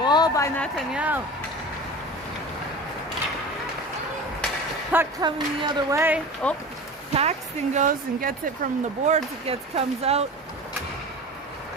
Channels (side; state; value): both; normal; correlation 0.34